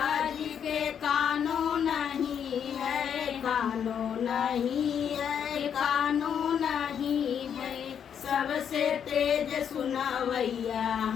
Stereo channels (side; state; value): right; quieter; 8.2 dB